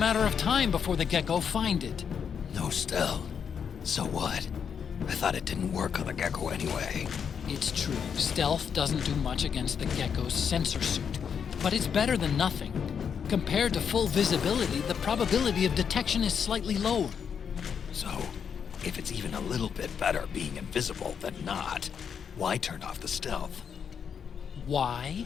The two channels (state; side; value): quieter; right; 7.2 dB